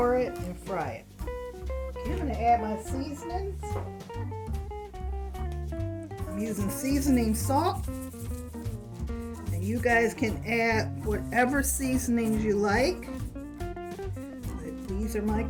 it and fry it. Okay, I'm going to add my seasonings. I'm using seasoning salt, and you guys can add whatever seasonings you like. These are my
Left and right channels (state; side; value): identical; both; correlation 1.00